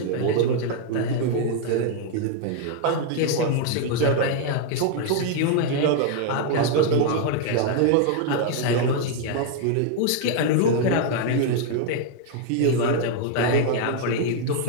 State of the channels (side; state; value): both; different; correlation 0.00